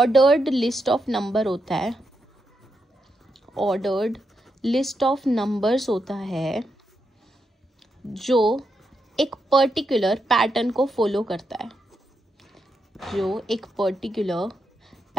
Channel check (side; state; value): both; normal; correlation 0.83